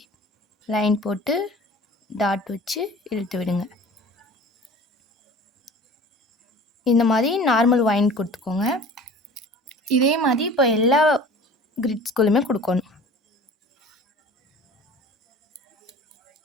லைன் போட்டு டாட் வச்சு இழுத்து விடுங்க. இந்த மாதிரி நார்மல் வைன் கொடுத்துக்கோங்க. இதே மாதிரி இப்போ எல்லா கிரிட்ஸ்குள்ளுமே கொடுக்கணும்.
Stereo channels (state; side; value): normal; both; correlation 0.42